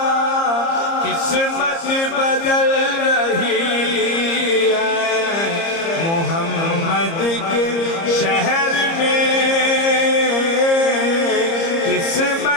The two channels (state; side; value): late; right; 30 ms